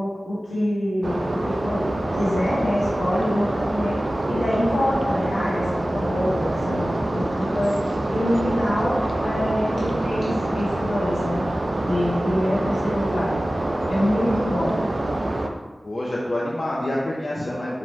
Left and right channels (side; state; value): both; normal; correlation 0.96